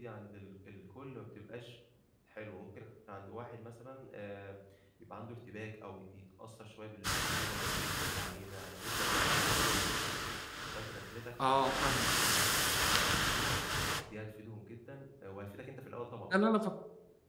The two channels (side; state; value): both; identical; correlation 1.00